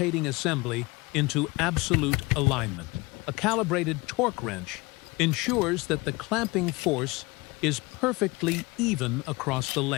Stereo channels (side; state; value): right; quieter; 23.9 dB